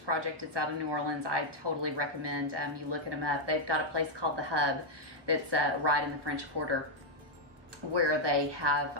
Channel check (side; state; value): left; late; 1.2 ms